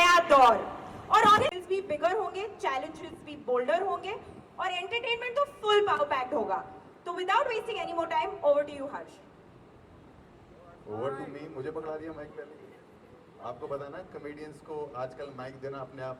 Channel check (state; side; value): identical; both; correlation 1.00